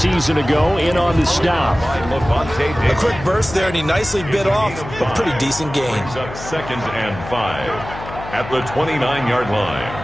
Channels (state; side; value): noise; left; hum, 12 dB below the sound